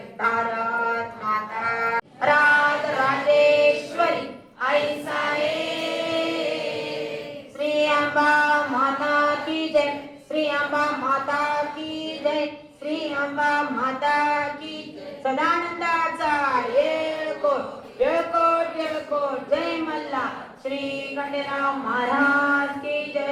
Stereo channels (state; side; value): identical; both; correlation 1.00